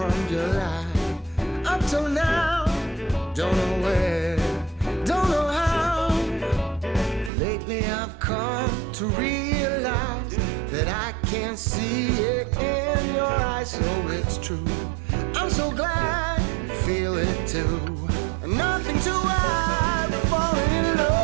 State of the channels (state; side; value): drops out; left; at 7.3 s